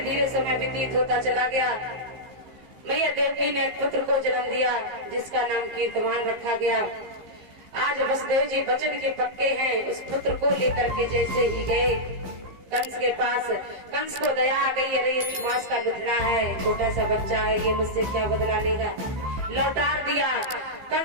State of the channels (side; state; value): left; late; 15 ms